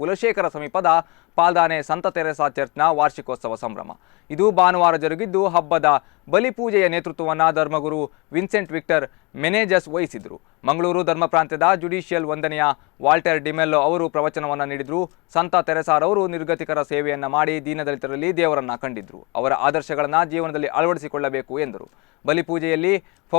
ಸಮೀಪದ ಪಾಲ್ದಾನೆ ಸಂತ ತೆರೇಸಾ ಚರ್ಚ್ನ ವಾರ್ಷಿಕೋತ್ಸವ ಸಂಭ್ರಮ. ಇದು ಭಾನುವಾರ ಜರುಗಿದ್ದು, ಹಬ್ಬದ ಬಲಿಪೂಜೆಯ ನೇತೃತ್ವವನ್ನು ಧರ್ಮಗುರು ವಿನ್ಸೆಂಟ್ ವಿಕ್ಟರ್ ಮೆನೇಜಸ್ ವಹಿಸಿದರು. ಮಂಗಳೂರು ಧರ್ಮ ಪ್ರಾಂತ್ಯದ ಜುಡಿಷಿಯಲ್ ವಂದನೆಯ ವಾಲ್ಟರ್ ಡಿಮೆಲ್ಲೋ ಅವರು ಪ್ರವಚನವನ್ನು ನೀಡಿದರು. ಸಂತ ತೆರೇಸಾರವರು ನಿರ್ಗತಿಕರ ಸೇವೆಯನ್ನು ಮಾಡಿ ದೀನದಲಿತರಲ್ಲಿ ದೇವರನ್ನ ಕಂಡಿದ್ರು. ಅವರ ಆದರ್ಶಗಳನ್ನು ಜೀವನದಲ್ಲಿ ಅಳವಡಿಸಿಕೊಳ್ಳಬೇಕು ಎಂದರು. ಬಲಿಪೂಜೆಯಲ್ಲಿ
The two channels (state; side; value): quieter; right; 28.3 dB